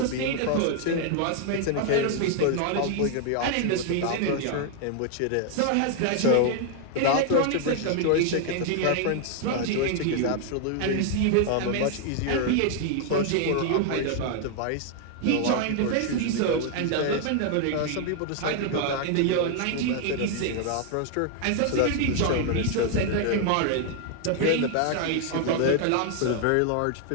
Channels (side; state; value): both; different; correlation 0.00